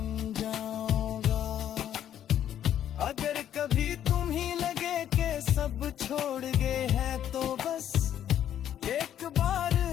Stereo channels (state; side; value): quieter; right; 10.5 dB